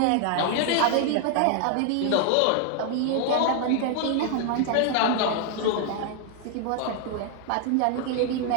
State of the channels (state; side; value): different; both; correlation 0.00